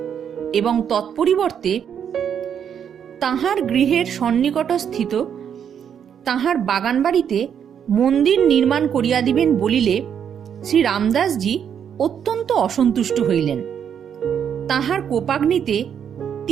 এবং তৎপরিবর্তে তাহার গৃহের সন্নিকটস্থিত তাহার বাগান বাড়িতে মন্দির নির্মাণ করিয়া দিবেন বলিলে শ্রী রামদাসজি অত্যন্ত অসন্তুষ্ট হইলেন। তাহার কোপাগ্নিতে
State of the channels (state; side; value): quieter; left; 8.3 dB